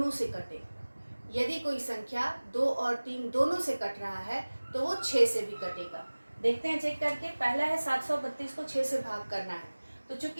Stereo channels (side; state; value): both; inverted; correlation -1.00